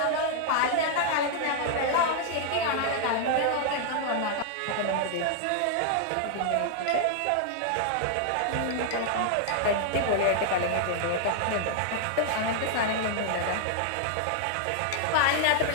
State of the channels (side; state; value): both; different; correlation 0.00